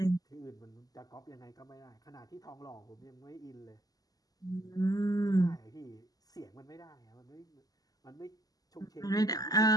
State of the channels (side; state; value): right; late; 0.18 ms